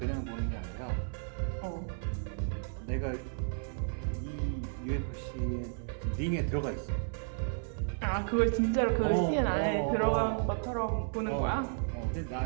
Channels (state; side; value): silent; left; 56 dB below the other